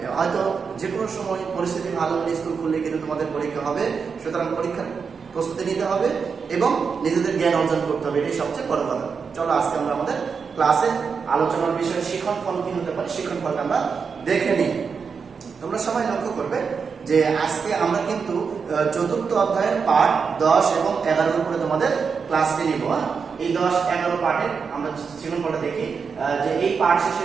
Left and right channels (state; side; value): quieter; left; 5.7 dB